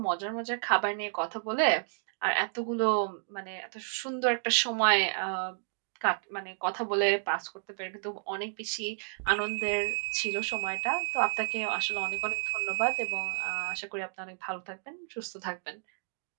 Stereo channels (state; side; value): silent; left; digital silence